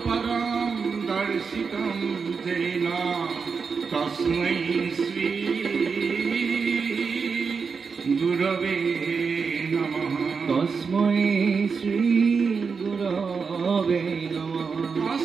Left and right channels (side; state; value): left; quieter; 5.4 dB